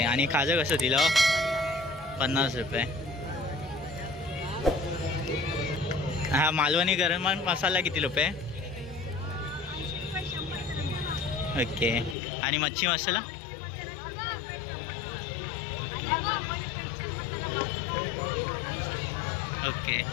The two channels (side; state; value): right; drops out; at 12.2 s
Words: आणि खाजं कसं दिलं? 50 रुपये. हा मालवणी गरम मसाला किती रुपये? ओके. आणि मच्छी मसाला? ओके.